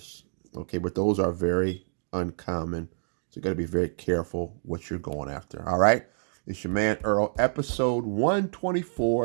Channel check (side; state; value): left; silent; digital silence